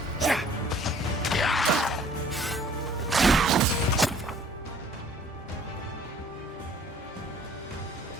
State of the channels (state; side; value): normal; both; correlation 0.55